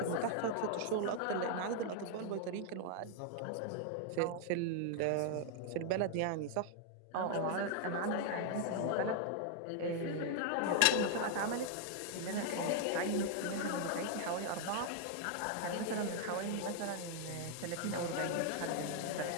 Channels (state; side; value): different; both; correlation 0.00